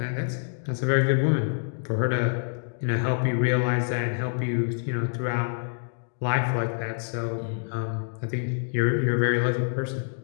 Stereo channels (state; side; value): silent; right; digital silence